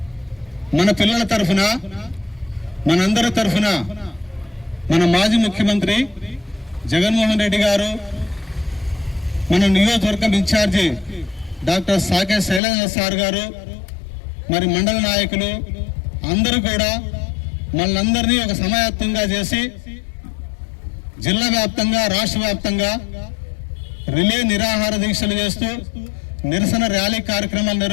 మన పిల్లల తరఫున, మనందరి తరఫున మన మాజీ ముఖ్యమంత్రి జగన్మోహన్ రెడ్డి గారు, మన నియోజకవర్గం ఇన్ఛార్జి డాక్టర్ సాకే శైలేంద్ర సార్ గారు, మరి మండల నాయకులు అందరూ కూడా మనందరినీ ఒక సమాయత్తంగా చేసి జిల్లా వ్యాప్తంగా, రాష్ట్ర వ్యాప్తంగా రిలే నిరాహార దీక్షలు చేస్తూ నిరసన ర్యాలీ కార్యక్రమాలు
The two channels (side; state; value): right; drops out; at 12.6 s